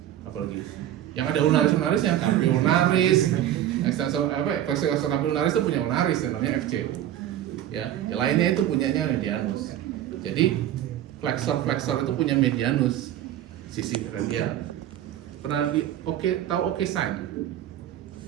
apalagi yang ada ulnaris yang ulnaris, ekstensor flexor ulnaris itu punya ulnaris namanya FC. Ya, yang lainnya itu punyanya medianus. Jadi flexor itu punya medianus sisi radial. Pernah tahu oke sign?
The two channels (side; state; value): left; quieter; 11.9 dB